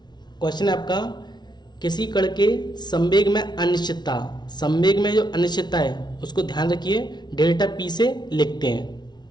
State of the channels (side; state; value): right; late; 0.20 ms